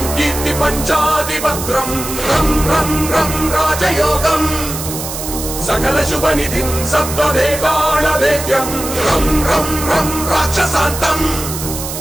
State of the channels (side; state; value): right; noise; hiss, 7 dB below the sound